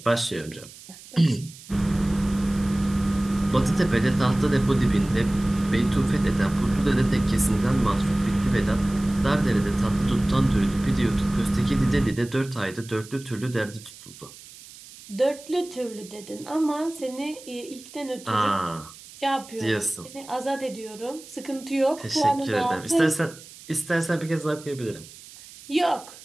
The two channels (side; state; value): right; noise; hiss, 19 dB below the sound